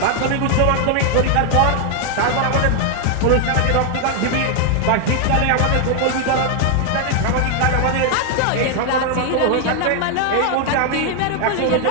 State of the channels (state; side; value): different; both; correlation 0.00